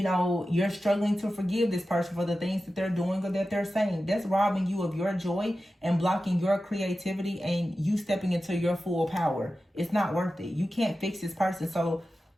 know, you're struggling to forgive this person for the things that they're doing or that they're saying. That's robbing you of your joy and blocking your creativity and you stepping into your full power. It's not worth it. You can't fix this person. So,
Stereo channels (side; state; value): both; normal; correlation 0.93